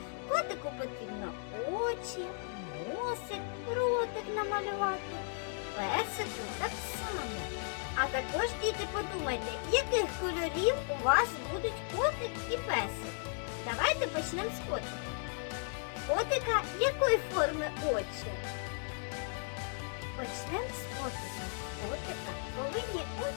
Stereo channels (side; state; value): right; silent; 54 dB below the other